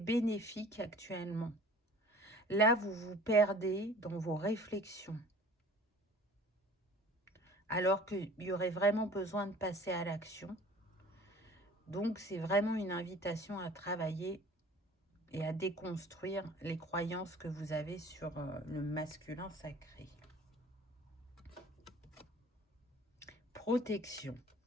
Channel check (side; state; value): both; normal; correlation 0.47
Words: actuellement. Là, vous vous perdez dans vos réflexions, alors qu'il y aurait vraiment besoin de passer à l'action. Donc, c'est vraiment une invitation à travailler et à déconstruire les croyances que vous avez sur le masculin sacré. Protection.